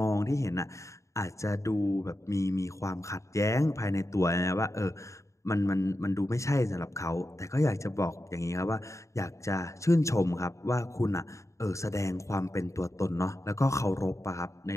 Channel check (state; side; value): late; right; 0.15 ms